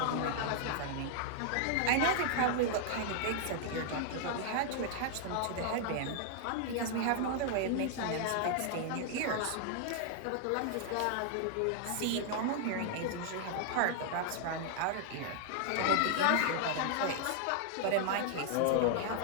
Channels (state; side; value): different; both; correlation 0.00